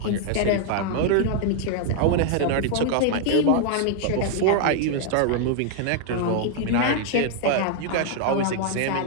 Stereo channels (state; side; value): different; both; correlation 0.00